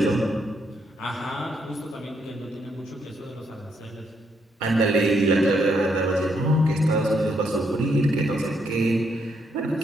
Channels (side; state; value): both; normal; correlation 0.75